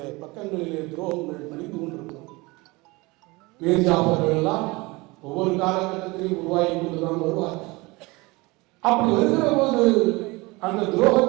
பக்கங்களிலே துரோகங்கள் மணிந்து கொண்டிருக்கிறோம். மேஜாபர்கள் எல்லாம் ஒவ்வொரு காலகட்டத்திலையும் உருவாகி கொண்டுதான் வருவார். அப்படி வருகிற போது அந்த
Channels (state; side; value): quieter; left; 23.8 dB